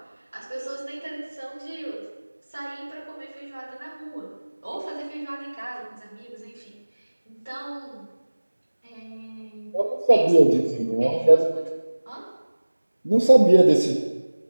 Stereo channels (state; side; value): inverted; both; correlation -1.00